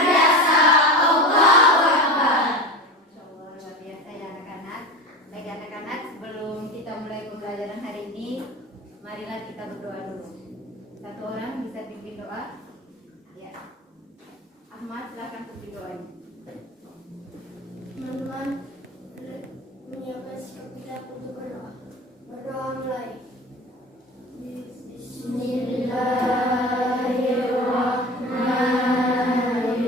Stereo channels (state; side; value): normal; both; correlation 0.30